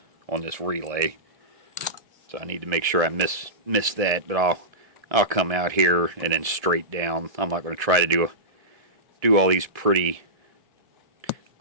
on this relay. So I need to make sure I miss that, but I'll come out here and then straight down. I'm not going to try to do all these pretty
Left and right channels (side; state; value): left; late; 1.7 ms